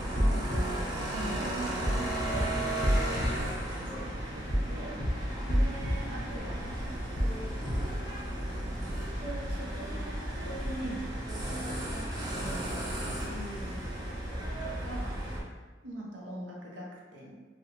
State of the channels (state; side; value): normal; both; correlation 0.77